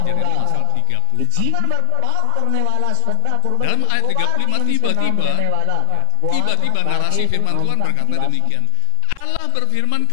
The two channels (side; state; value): both; different; correlation 0.00